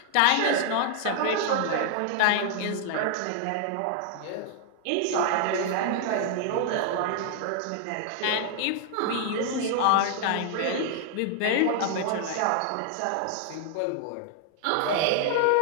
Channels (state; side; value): different; both; correlation 0.00